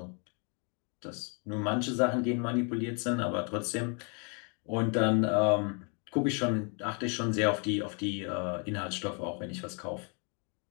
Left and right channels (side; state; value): right; quieter; 36.7 dB